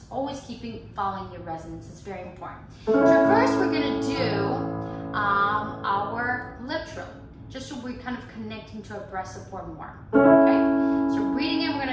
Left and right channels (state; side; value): identical; both; correlation 1.00